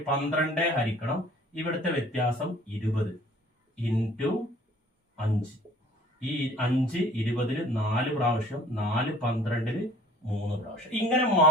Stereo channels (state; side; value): normal; both; correlation 0.52